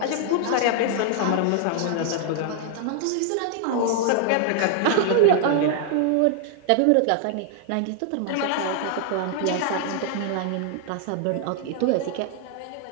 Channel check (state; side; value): different; both; correlation 0.00